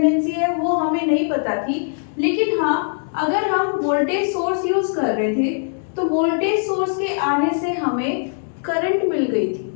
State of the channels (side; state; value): right; silent; digital silence